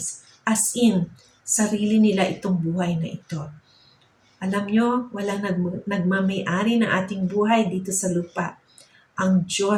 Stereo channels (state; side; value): identical; both; correlation 1.00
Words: as in, sarili nila itong buhay na ito. Alam nyo, walang nagmamayari ng ating buhay dito sa lupa. Ang